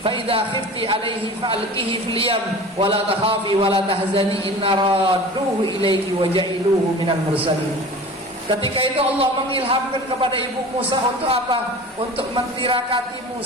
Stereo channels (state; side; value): normal; both; correlation 0.38